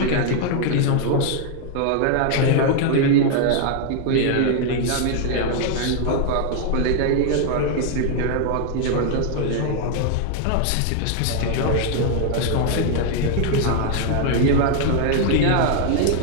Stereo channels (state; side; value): different; both; correlation 0.00